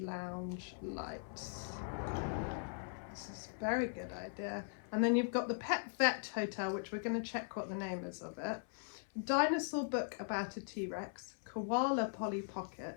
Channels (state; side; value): silent; right; 51 dB below the other